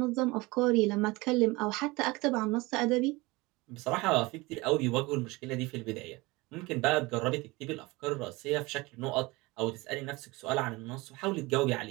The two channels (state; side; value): quieter; left; 22.9 dB